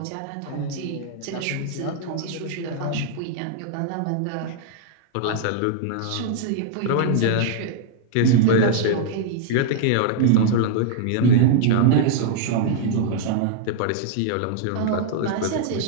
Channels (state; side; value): different; both; correlation -0.01